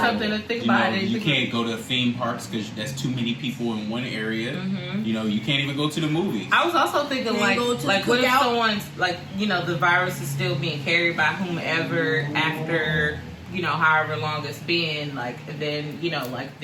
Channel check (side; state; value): both; identical; correlation 1.00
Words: to think about. You can't go to theme parks because that's too many people in one area. Mm-hmm. You know, you can't even go to the movies. I was also thinking like what if someone's like, you know, the virus is still being carried by whomever after, you know, however long it's been, like, then, you know, like,